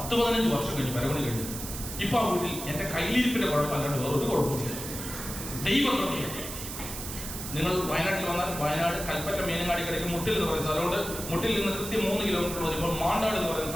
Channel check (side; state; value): right; noise; hiss, 8 dB below the sound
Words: വർഷം കഴിഞ്ഞ് പരമണി കഴിഞ്ഞു. ഇപ്പൊ ആ വീട്ടിൽ എന്റെ കയ്യിലിരിപ്പിന്റെ കുഴപ്പമല്ലാണ്ട് വേറൊരു കുഴപ്പമില്ല. ദൈവകൃപയാണ്. നിങ്ങൾ വയനാട്ടിൽ വന്നാൽ വയനാട് കൽപ്പറ്റ മീനങ്ങാടി കിടക്കും മുട്ടിൽ എന്ന് പറയുന്ന സ്ഥലമുണ്ട്. മുട്ടിൽ നിന്ന് കൃത്യം 3 കിലോമീറ്റർ വരുമ്പോൾ മാണ്ടാട് എന്ന് പറയുന്ന